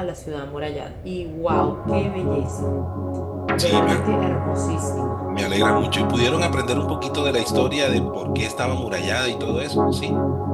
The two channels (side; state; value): both; identical; correlation 1.00